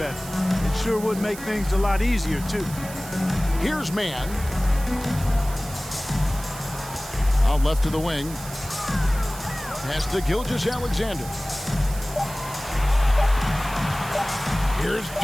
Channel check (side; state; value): right; noise; hiss, 14 dB below the sound